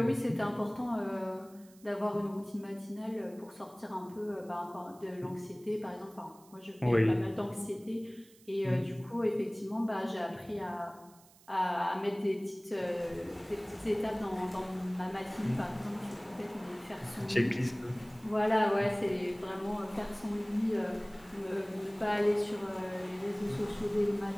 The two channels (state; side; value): noise; right; hiss, 26 dB below the sound